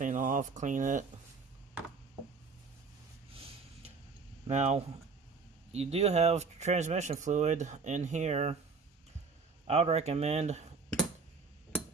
off, clean it. Now you do have transmission fluid in here. I would recommend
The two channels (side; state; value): left; quieter; 4.8 dB